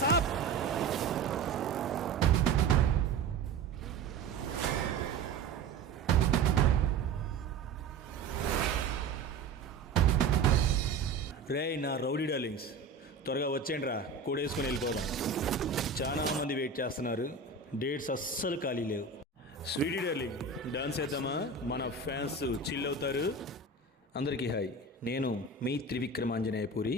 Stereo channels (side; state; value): left; quieter; 4.4 dB